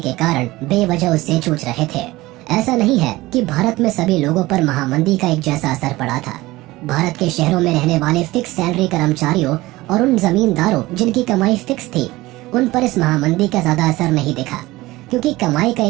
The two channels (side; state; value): left; quieter; 19.1 dB